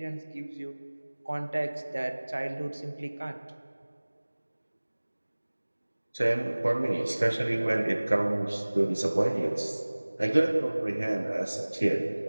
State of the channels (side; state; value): both; inverted; correlation -1.00